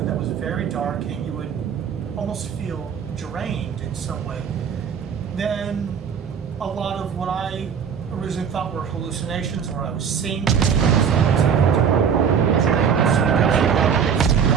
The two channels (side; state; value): left; quieter; 7.2 dB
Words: was very dark, and you would almost feel drained in some way. Then a lot of what I originally thought were hallucinations, where I was seeing things,